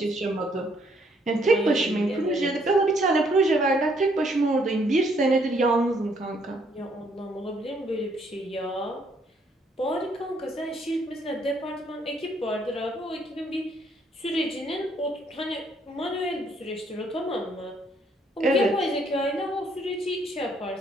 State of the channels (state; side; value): normal; both; correlation 0.68